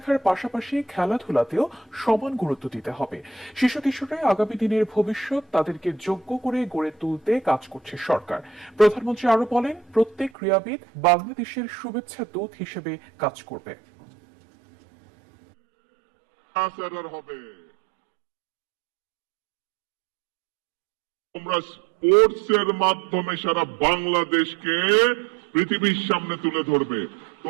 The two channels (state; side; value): drops out; left; at 10.3 s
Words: পাশাপাশি খেলাধুলাতেও সমান গুরুত্ব দিতে হবে। শিশু কিশোররা আগামী দিনের ভবিষ্যৎ, তাদেরকে যোগ্য করে গড়ে তুলতে কাজ করছে সরকার। প্রধানমন্ত্রী আরো বলেন, প্রত্যেক ক্রীড়াবিদ বাংলাদেশের শুভেচ্ছা দূত হিসেবে কাজ করবে। তোমরা স্পোর্টস এর মাধ্যমে সারা বাংলাদেশকে পৃথিবীর সামনে তুলে ধরবে।